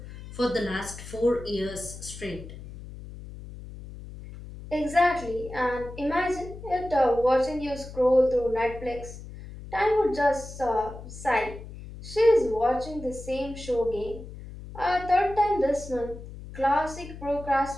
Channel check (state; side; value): noise; left; hum, 13 dB below the sound